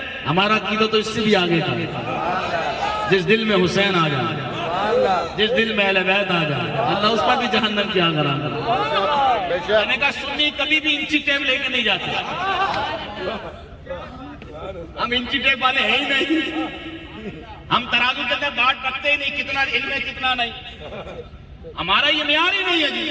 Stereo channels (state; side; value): identical; both; correlation 1.00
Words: ہمارا عقیدہ تو اس سے بھی آگے کا، جس دل میں حسین آ جائے، جس دل میں اہل بیت آ جائے اللہ اس پر بھی جہنم کی آگ حرام کر دے۔ میں نے کہا سنی کبھی بھی انچی ٹیپ لے کے نہیں جاتے، ہم انچی ٹیپ والے ہیں ہی نہیں، ہم ترازو کے اندر بات کرتے ہی نہیں کتنا علم ہے کتنا نہیں، ہمارا یہ معیار ہی نہیں ہے جی۔